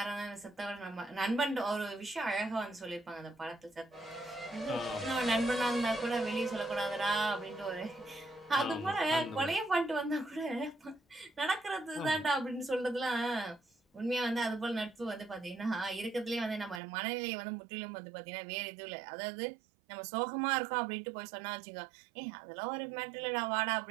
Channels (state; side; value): drops out; left; at 16.8 s